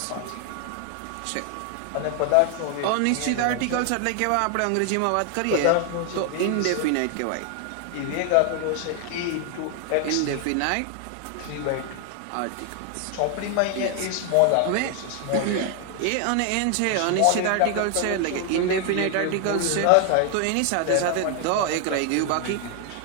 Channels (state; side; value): different; both; correlation 0.00